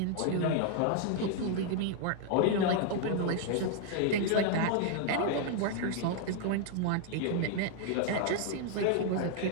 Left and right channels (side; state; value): both; different; correlation 0.00